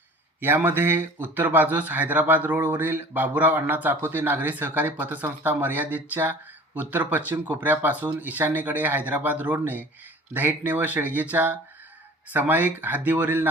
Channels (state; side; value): normal; both; correlation 0.44